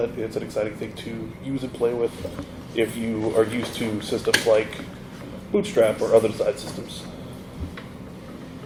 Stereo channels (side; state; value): both; identical; correlation 1.00